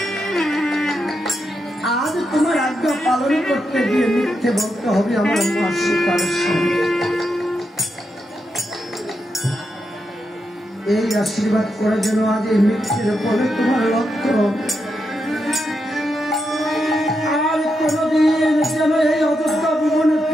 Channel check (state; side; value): normal; both; correlation 0.84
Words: আজ তোমার আজ্ঞা পালন করতে গিয়ে মিথ্যে বলতে হবে আমার মা সীতার সঙ্গে। এই আশীর্বাদ করে যেন আজ এই মিথ্যের পরে তোমার লক্ষ্য আর কোনদিন যেন এই অযোধ্যা ভুবনে